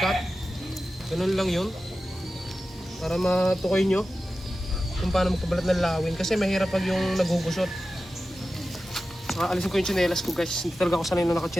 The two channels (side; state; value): both; normal; correlation 0.94